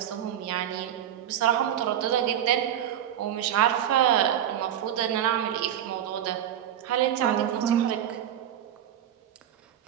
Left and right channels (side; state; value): left; quieter; 10.6 dB